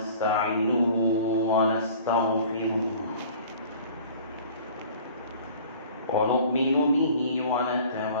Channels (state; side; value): inverted; both; correlation -0.47